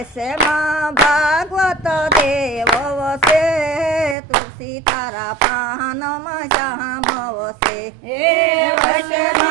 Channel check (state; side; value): drops out; left; at 4.2 s